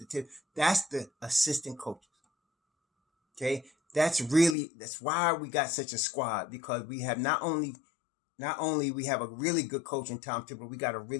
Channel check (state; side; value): drops out; right; at 4.5 s